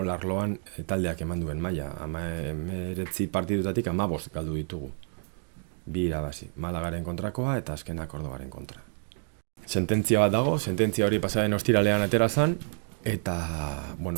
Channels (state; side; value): silent; left; 59 dB below the other